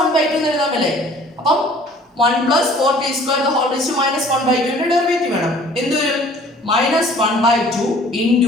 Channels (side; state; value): both; normal; correlation 0.52